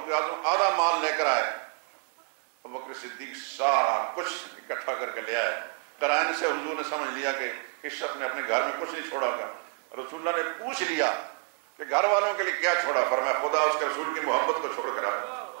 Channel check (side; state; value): left; quieter; 35.3 dB